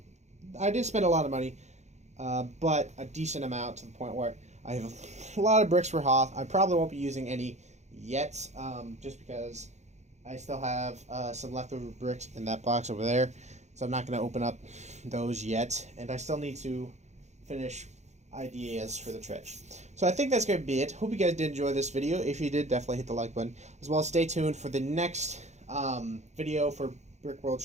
I did spend a lot of money, but a decent amount, to the point where I have a lot of bricks for Hoth. I probably won't be using any yet, just because I still have some leftover bricks in that box over there, so I'm not going to open up those yet, and I still need to finish ideas for the trench. So I think that's going to be it. Hope you guys did enjoy this video. If you did, definitely hit the like button, as well as stay tuned for the next video for Brickworld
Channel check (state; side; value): late; left; 0.33 ms